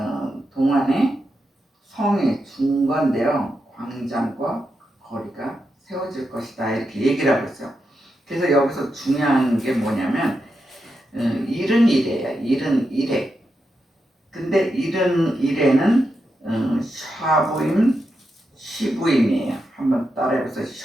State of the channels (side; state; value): both; normal; correlation 0.86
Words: 동안에 성이 중건되어 광장과 거리가 세워질 것이다 이렇게 얘기를 하고 있어요. 그래서 여기서 중요한 게 뭐냐면 일은 이래야 일은 이래. 근데 일은 이래는 샤부임 시부임이에요. 한번 따라해보세요.